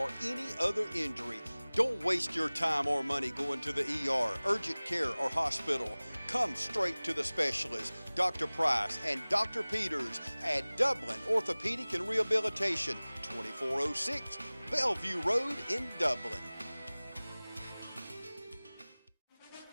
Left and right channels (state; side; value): inverted; both; correlation -0.99